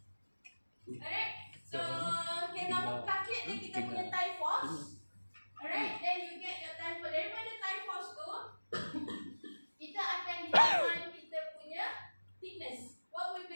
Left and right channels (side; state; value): both; inverted; correlation -1.00